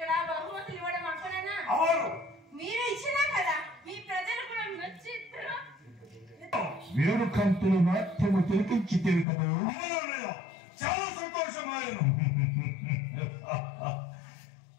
బహుమతులు ఇవ్వడం అక్కడనా? అవును, మీరు ఇచ్చినా కదా, మీ ప్రజలు కూడా నచ్చి వేడుకంతులు నాట్యము తిరిగించితేవి కదా. చాలా సంతోషమాయను.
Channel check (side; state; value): right; drops out; at 9.2 s